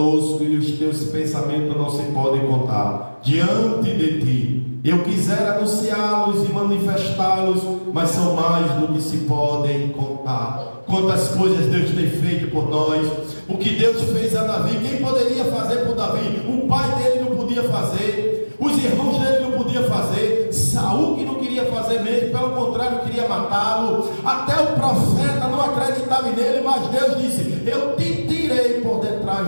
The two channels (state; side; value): inverted; both; correlation -1.00